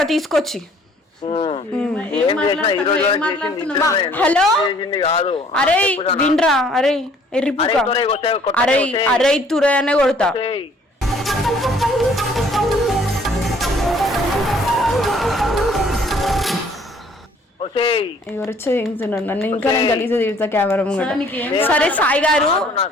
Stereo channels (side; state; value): both; normal; correlation 0.58